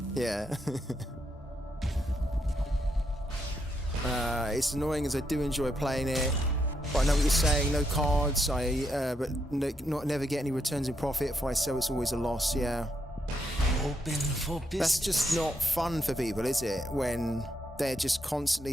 Yeah. It's annoying as I do enjoy playing it. But I know what you're saying, no cards, never get any returns in profit. If I sell, it's always a loss, yeah. Open for business. That's just not fun for people, is it? When they're just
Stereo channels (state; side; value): normal; both; correlation 0.79